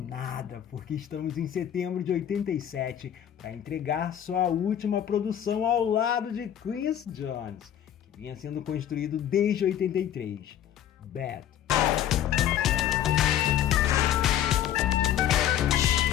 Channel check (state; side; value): quieter; right; 10.5 dB